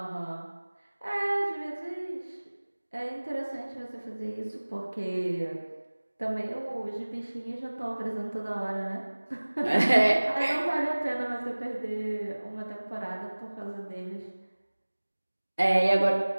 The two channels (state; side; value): inverted; both; correlation -1.00